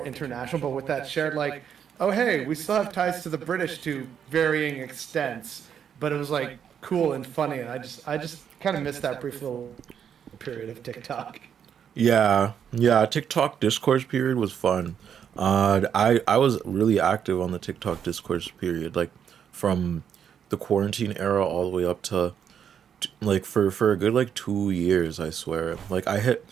international, but with that shared like, oh hey, we still have ties to the British to varying extents, but it was like cool and funny, and I just kind of missed that brief little period of TikTok. Yeah, TikTok discourse period was fun. I was really active on the TikTok discourse period, like from the quarantine era all the way up to like for a good like 2 years, I swear. Like I hit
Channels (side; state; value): left; quieter; 8.2 dB